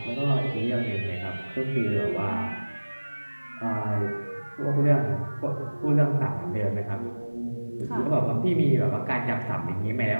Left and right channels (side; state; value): both; inverted; correlation -1.00